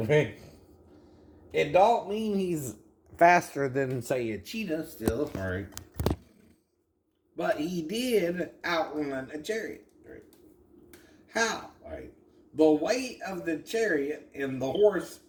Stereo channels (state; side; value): identical; both; correlation 1.00